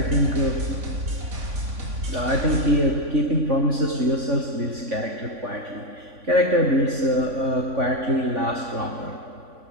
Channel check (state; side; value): late; left; 3.5 ms